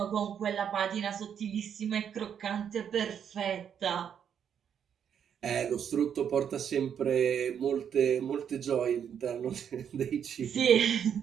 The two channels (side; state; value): left; quieter; 8.3 dB